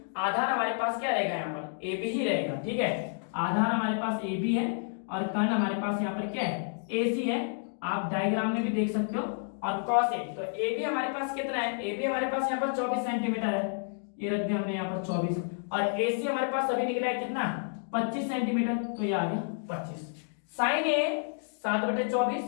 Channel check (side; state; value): right; silent; digital silence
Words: आधार हमारे पास क्या रहेगा, यहाँ पर AB ही रहेगा। ठीक है, आधार हमारे पास AB है और कर्ण हमारे पास यहाँ पर क्या है, AC है, आप डायग्राम में भी देख सकते हो। और cos A, तो AB हमारे पास कितना है, AB हमारे पास यहाँ पर 24 सेंटीमीटर है, ये रख दिया हमने यहाँ पर 24, और AC हमारे पास अभी निकला है कितना, 25 सेंटीमीटर, तो ये आ गया 25। Sine A 7/24,